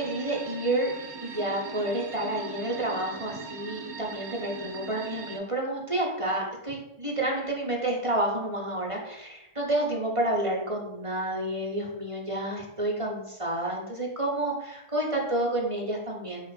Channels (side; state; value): left; late; 1.5 ms